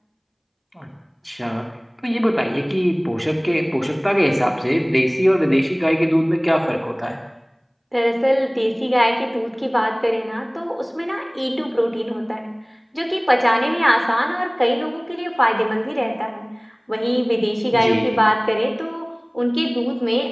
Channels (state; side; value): identical; both; correlation 1.00